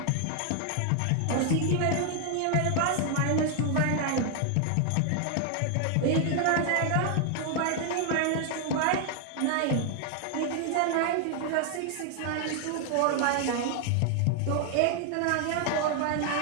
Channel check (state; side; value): different; both; correlation 0.00